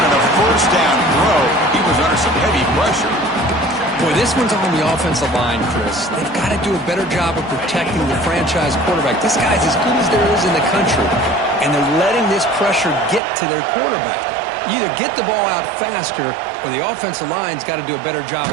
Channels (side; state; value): left; drops out; at 13.2 s